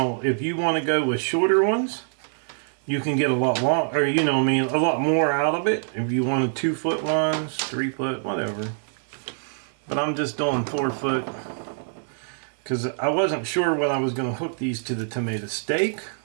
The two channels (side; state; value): left; silent; 62 dB below the other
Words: if you want to go with shorter ones, you can get a lot long, or a lot more out of it. If you wanted 2-foot ones, 3-foot, whatever. But I'm just doing 4-foot because I wasn't sure when I was going to hook these to the tomato stake